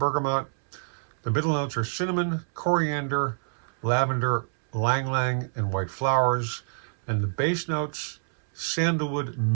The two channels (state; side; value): silent; left; 60 dB below the other